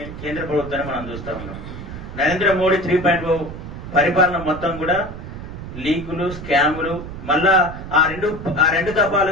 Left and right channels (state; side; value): noise; right; rumble, 10 dB below the sound